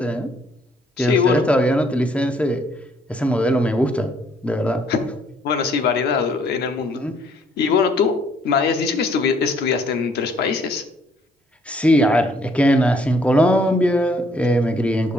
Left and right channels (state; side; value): normal; both; correlation 0.64